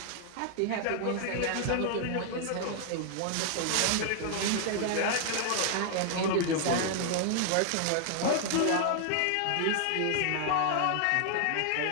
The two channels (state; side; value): different; both; correlation 0.00